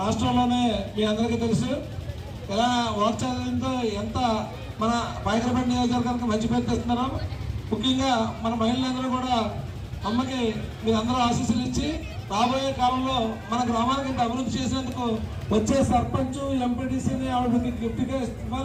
రాష్ట్రంలోనే మీ అందరికీ తెలుసు ఎలా వాక్చాలంతో ఎంత మన బైకరపేట నియోజకవర్గానికి మంచి పేరు తెస్తున్నారో. ముఖ్యంగా మన మహిళలందరూ కూడా అమ్మకి మీరందరూ ఆశీస్సులు ఇచ్చి రాబోయే కాలంలో మన గ్రామానికి ఇంత అభివృద్ధి చేసేందుకు వచ్చే సర్పంచ్ ఎంపీటీసీని ఆవిడకి గిఫ్ట్గా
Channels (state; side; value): identical; both; correlation 1.00